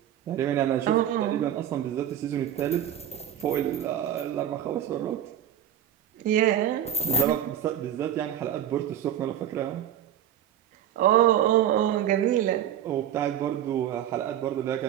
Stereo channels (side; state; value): left; quieter; 10.5 dB